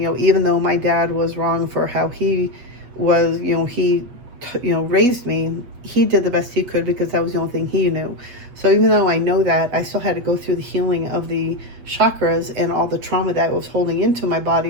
though my dad was wrong for how he was, he raised me, he did the best he could because that was the only thing he knew. So even though I know that, I still had to go through the healing of the chakras and all the trauma that was holding into my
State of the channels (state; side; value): late; left; 8.3 ms